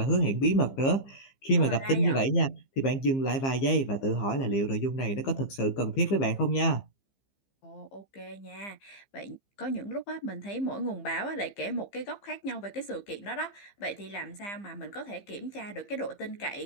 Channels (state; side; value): late; right; 15 ms